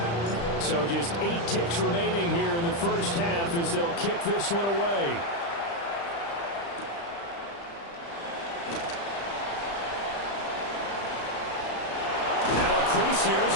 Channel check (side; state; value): right; late; 35 ms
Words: So just 8 ticks remaining here in the first half as they'll kick this one away. Now a crease here as